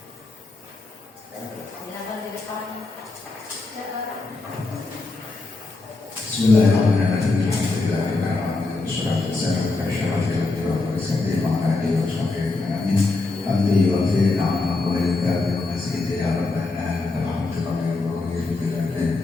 Bismillahirrahmanirrahim. Alhamdulillah, wassalatu wassalamu ala asyrafil anbiya'i wal mursalin wa ala alihi wa sahbihi ajma'in. Hamdi wa khairin amma wa ilkabi wa masjidi ya rabbana alhamdulillah wa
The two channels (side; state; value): right; quieter; 3.4 dB